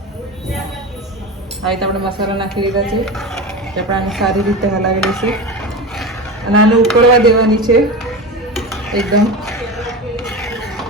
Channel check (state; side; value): normal; both; correlation 0.25